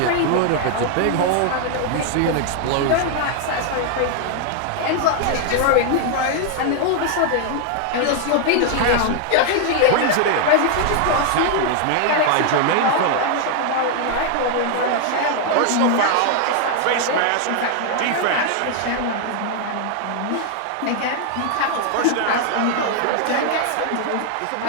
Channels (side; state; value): both; different; correlation 0.00